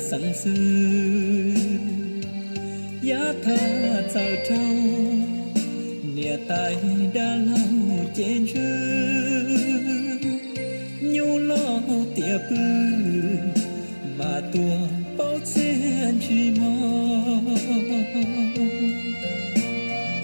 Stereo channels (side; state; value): both; inverted; correlation -1.00